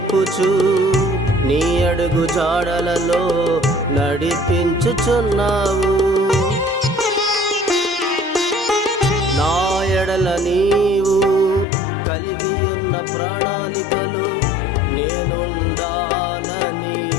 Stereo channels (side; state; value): right; drops out; at 11.7 s